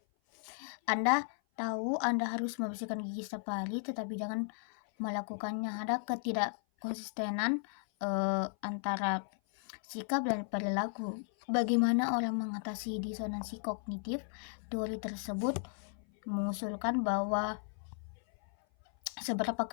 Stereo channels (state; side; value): silent; right; 54 dB below the other